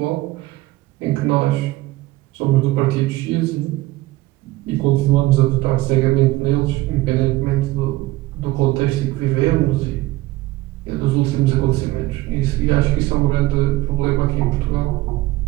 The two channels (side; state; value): left; quieter; 18.5 dB